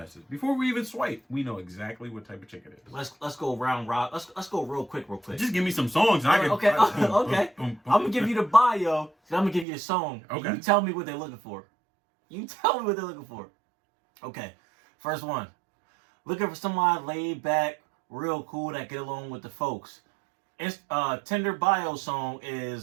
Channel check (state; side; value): drops out; left; at 9.7 s